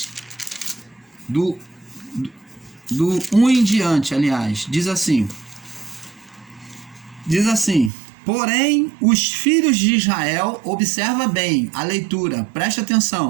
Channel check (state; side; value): drops out; left; at 7.9 s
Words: do 1 em diante, aliás, diz assim, porém, os filhos de Israel, observa bem a leitura, presta